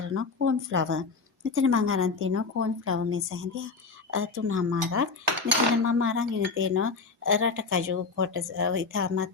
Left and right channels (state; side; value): quieter; right; 4.4 dB